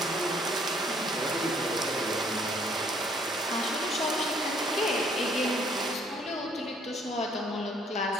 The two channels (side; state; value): both; normal; correlation 0.63